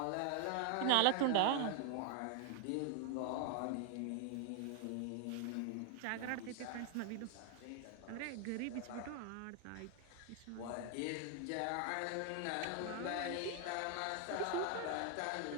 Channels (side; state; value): both; different; correlation 0.00